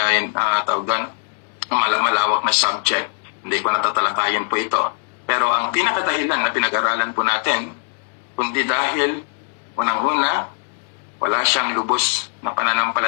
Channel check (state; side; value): silent; right; 58 dB below the other